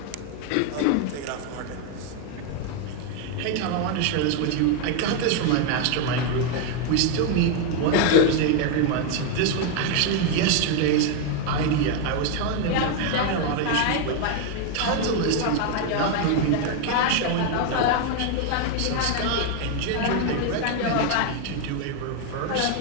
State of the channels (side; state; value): both; different; correlation 0.01